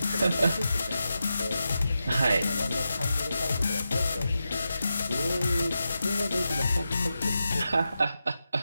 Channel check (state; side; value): inverted; both; correlation -0.89